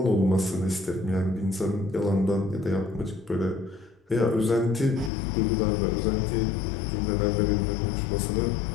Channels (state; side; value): drops out; right; at 5.1 s